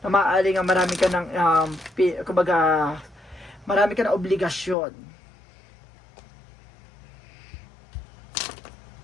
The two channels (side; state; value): right; drops out; at 4.8 s